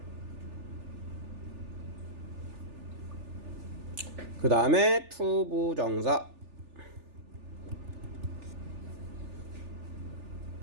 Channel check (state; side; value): late; left; 3.4 ms